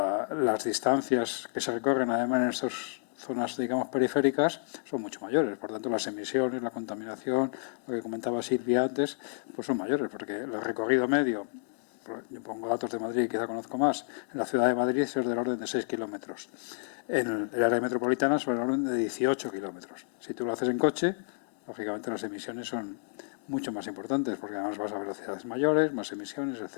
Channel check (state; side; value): silent; right; digital silence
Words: las distancias que se recorren además en estas zonas, digamos, periféricas, son mucho mayores. Por tanto, las emisiones, la contaminación, lo que comentaba Silvia antes, pues son mayores, porque el recorrido medio, yo pongo datos de Madrid, quizá conozco más, en la ciudad de Madrid es del orden de 6 kilómetros. En el área metropolitana es del orden de 18 kilómetros. Si tú lo haces en coche, lógicamente las emisiones son mucho más importantes, porque además vas a velocidades mayores, más emisiones,